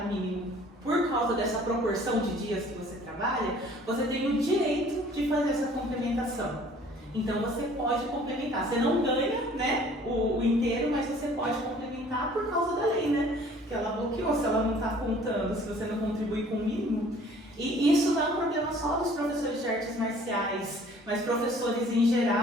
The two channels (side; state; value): both; normal; correlation 0.53